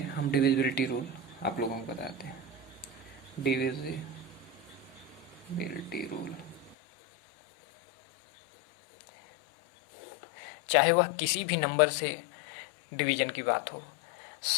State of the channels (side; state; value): right; drops out; at 6.8 s